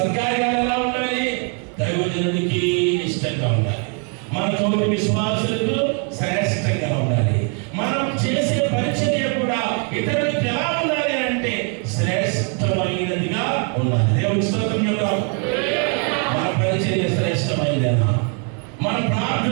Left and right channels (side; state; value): left; quieter; 38.8 dB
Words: ఎలా ఉండాలి? దైవజనుడికి ఇష్టంగా ఉండాలి. మన తోటి విశ్వాసులకు శ్రేష్టంగా ఉండాలి. మనం చేసే పరిచర్య కూడా ఇతరులకు ఎలా ఉండాలి అంటే శ్రేష్టమైనదిగా ఉండాలి. దేవుని స్తోత్రం చెప్తాం. మన పరిచర్య శ్రేష్టమైనదేనా? మన